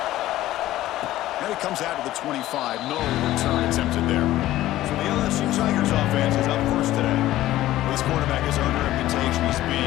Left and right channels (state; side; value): quieter; right; 15.0 dB